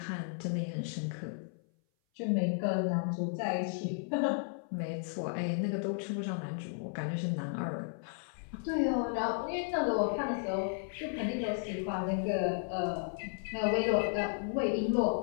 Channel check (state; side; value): silent; right; 55 dB below the other